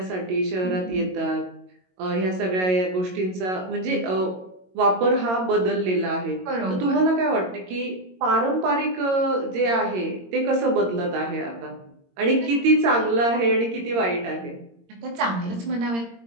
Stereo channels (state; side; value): late; left; 22 ms